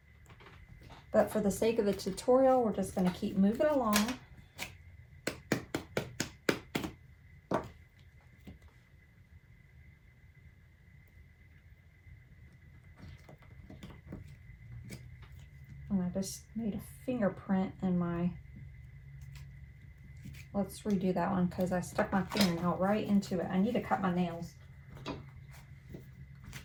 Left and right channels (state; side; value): identical; both; correlation 1.00